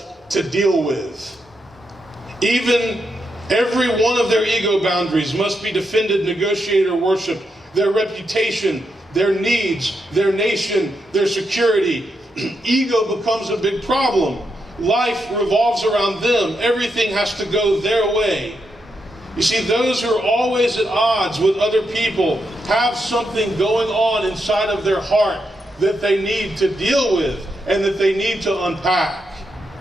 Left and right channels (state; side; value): normal; both; correlation 0.83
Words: to deal with. Even every one of their ego boundaries must be defended, negotiated, or worshipped. Their reputation, their needs, their nation, their security. Ego becomes a big problem. Life revolves around them. Everything has to go their way. You see, those who are always at odds with other people have something going on inside of their heart that they need to deal with and that they need to unpack.